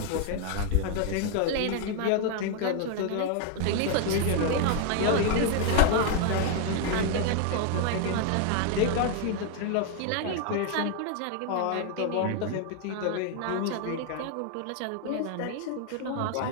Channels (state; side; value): different; both; correlation 0.00